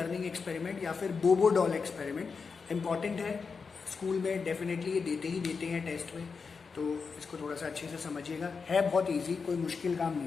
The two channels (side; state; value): right; quieter; 5.2 dB